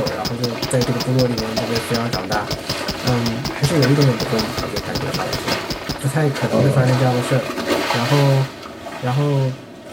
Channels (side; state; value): both; identical; correlation 1.00